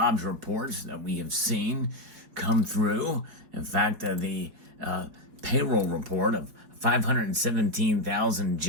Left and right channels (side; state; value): left; late; 4.8 ms